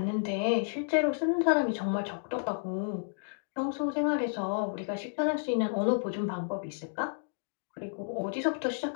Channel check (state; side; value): silent; right; digital silence